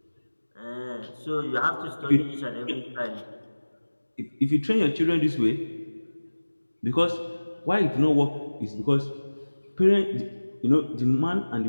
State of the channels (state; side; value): inverted; both; correlation -1.00